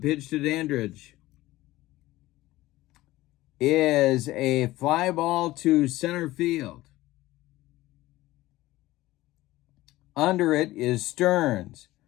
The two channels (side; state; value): right; quieter; 17.4 dB